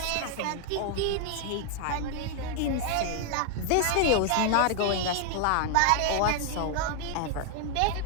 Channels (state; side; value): different; both; correlation 0.00